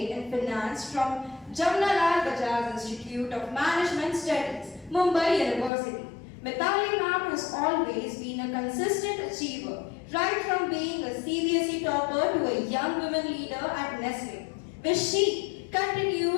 in Finance from Jamnalal Bajaj Institute of Management Studies, Mumbai University. Mithali ma'am has always been a consistent achiever, right from being a CBSE topper to a young women leader at Nestle, where she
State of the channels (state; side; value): drops out; right; at 5.7 s